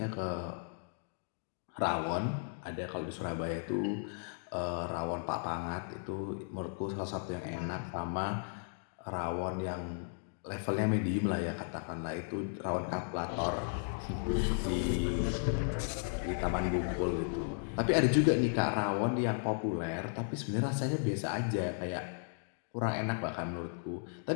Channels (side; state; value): right; silent; digital silence